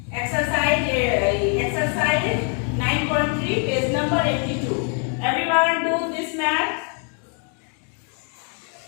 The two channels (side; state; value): right; quieter; 39.5 dB